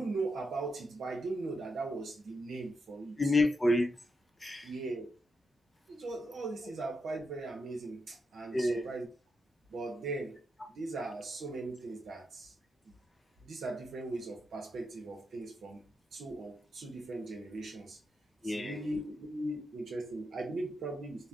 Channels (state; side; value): normal; both; correlation 0.84